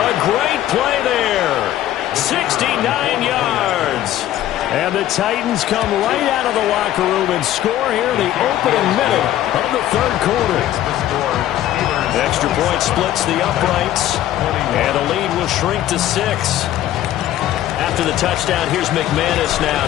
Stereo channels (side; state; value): right; quieter; 12.9 dB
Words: great play there. 69 yards. And the Titans come right out of the locker room and score here in the opening minute of the third quarter. The extra point splits the uprights, and the lead will shrink to 6. After the touchdown, here's McManus now